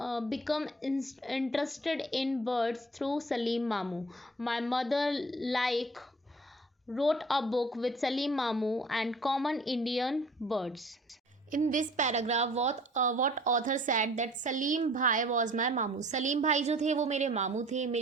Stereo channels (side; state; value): both; normal; correlation 0.51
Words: interested in birds through Salim Mamu. My mother wrote a book with Salim Mamu and common Indian birds. In this paragraph, what author said that Salim Bhai was my मामू. सलीम भाई जो थे वो मेरे मामू थे,